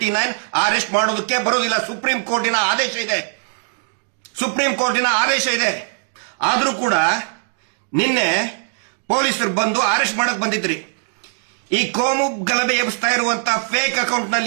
ಅರೆಸ್ಟ್ ಮಾಡೋದಕ್ಕೆ ಬರೋದಿಲ್ಲ. ಸುಪ್ರೀಂ ಕೋರ್ಟಿನ ಆದೇಶ ಇದೆ. ಆದರೂ ಕೂಡ ನಿನ್ನೆ ಪೊಲೀಸರು ಬಂದು ಅರೆಸ್ಟ್ ಮಾಡಕ್ ಬಂದಿದ್ರಿ. ಈ ಕೋಮು ಗಲಭೆ ಎಬ್ಬಿಸ್ತಾ ಇರುವಂತ ಫೇಕ್ ಅಕೌಂಟ್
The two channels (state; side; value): silent; left; 66 dB below the other